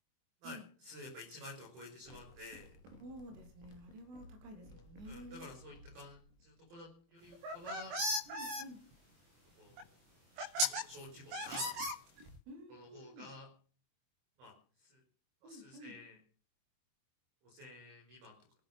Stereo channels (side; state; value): left; late; 24 ms